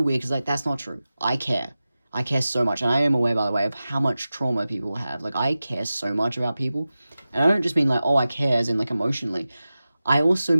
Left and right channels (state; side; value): inverted; both; correlation -0.95